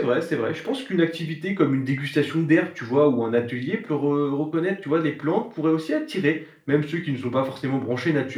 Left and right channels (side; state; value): both; identical; correlation 1.00